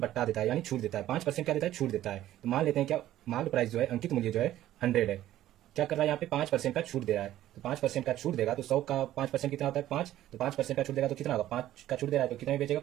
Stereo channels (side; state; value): left; quieter; 13.5 dB